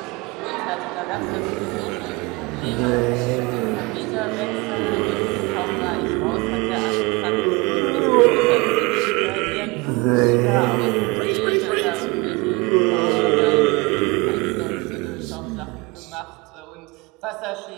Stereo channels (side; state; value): left; quieter; 25.5 dB